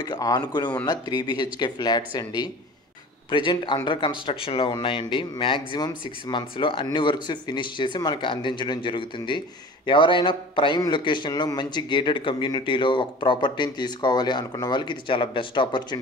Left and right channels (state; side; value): normal; both; correlation 0.41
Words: ఆనుకుని ఉన్న 3BHK ఫ్లాట్స్ అండి. ప్రజెంట్ అండర్ కన్స్ట్రక్షన్లో ఉన్నాయండి. మ్యాక్సిమం 6 మంత్స్లో అన్ని వర్క్స్ ఫినిష్ చేసి మనకు అందించడం జరుగుతుంది. ఎవరైనా ప్రైమ్ లొకేషన్లో మంచి గేటెడ్ కమ్యూనిటీలో ఒక ప్రాపర్టీని తీసుకోవాలి అనుకున్న వాళ్ళకి ఇది చాలా బెస్ట్